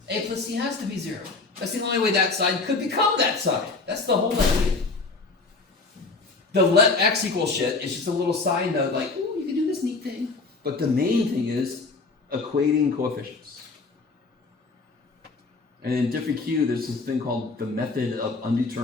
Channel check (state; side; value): quieter; right; 3.9 dB